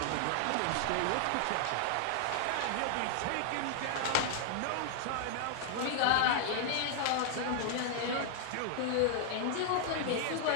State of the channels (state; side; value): different; both; correlation 0.00